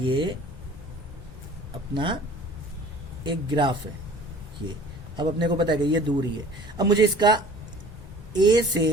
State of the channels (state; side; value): normal; both; correlation 0.47